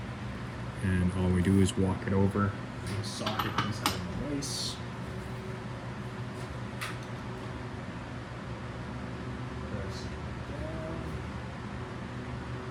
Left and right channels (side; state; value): both; identical; correlation 1.00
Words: and all we do is walk it over to the socket inside the device. Press it down.